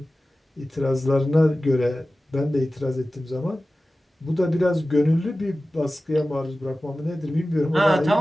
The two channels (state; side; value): normal; both; correlation 0.96